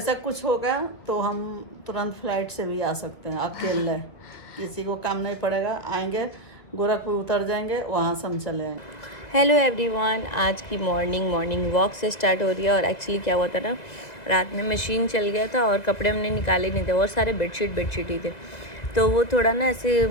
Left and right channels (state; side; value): late; right; 2.0 ms